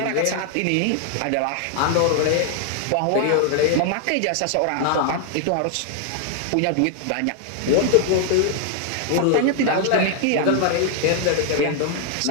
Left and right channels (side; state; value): both; different; correlation 0.00